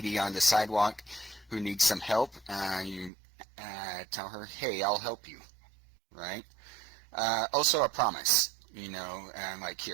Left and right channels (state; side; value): drops out; left; at 3.1 s